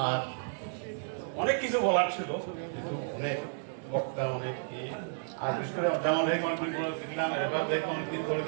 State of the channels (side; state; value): left; silent; digital silence